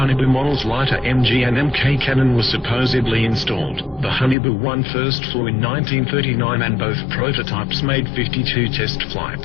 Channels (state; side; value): drops out; right; at 4.4 s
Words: models lighter MG and MK cannon was supposedly installed. The Haunebu 1 first flew in 1939 and both prototypes made 52 test